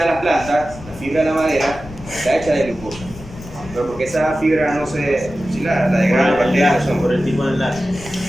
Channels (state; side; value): noise; left; rumble, 16 dB below the sound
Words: de las plantas, la fibra de la madera, está hecha de glucosa. Pero porque esa fibra no se, si la degrada las bacterias no son. Por el tipo de enlace.